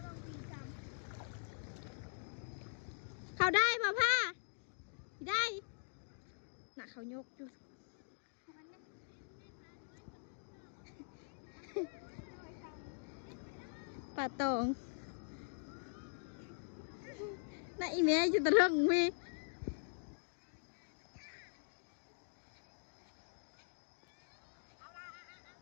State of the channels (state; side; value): silent; right; digital silence